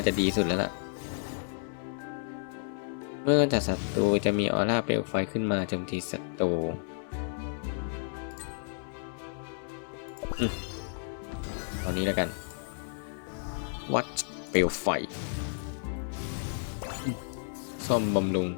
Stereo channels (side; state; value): right; silent; 57 dB below the other